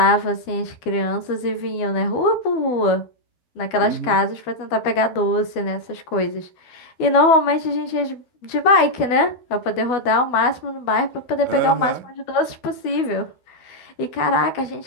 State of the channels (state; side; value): late; right; 12 ms